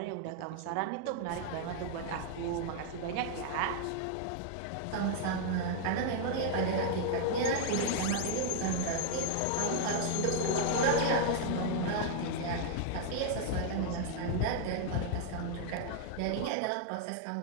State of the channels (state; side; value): different; both; correlation -0.01